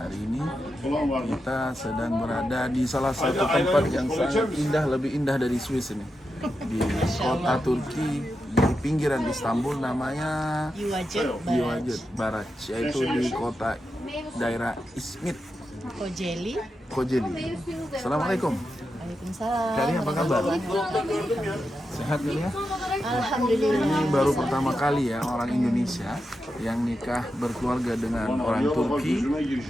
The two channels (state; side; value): normal; both; correlation 0.88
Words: hari ini kita sedang berada di salah satu tempat yang sangat indah, lebih indah dari Swiss ini, di kota Turki di pinggiran Istanbul, namanya Yuvacık Baraj, yaitu di kota daerah Izmit, Kocaeli. Assalamualaikum. Waalaikumsalam. Kari apa kabar? Sehat ya? Alhamdulillah. Ini baru pertama kali ya orang Indonesia yang nikah berkeluarga dengan orang Turki,